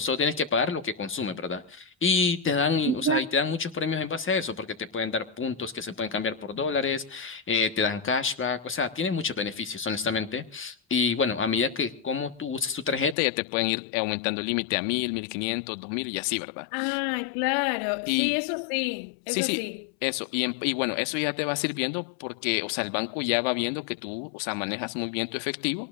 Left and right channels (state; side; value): drops out; right; at 13.2 s